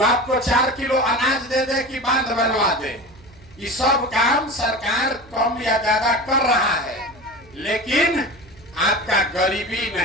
आपको 4 किलो अनाज दे दे कि बांध बनवा दे, ये सब काम सरकार कम या ज्यादा कर रहा है, लेकिन आपका गरीबी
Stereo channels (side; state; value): right; noise; hum, 25 dB below the sound